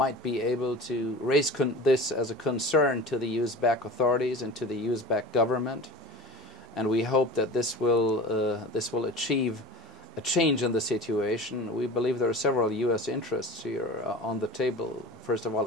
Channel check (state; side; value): normal; both; correlation 0.35